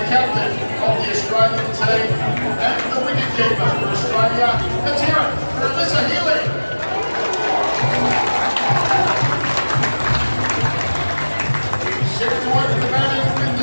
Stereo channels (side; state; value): both; inverted; correlation -1.00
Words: captain of the Australian team and the wicketkeeper for Australia. Let's hear it for Alyssa Healy. Set to work the batting with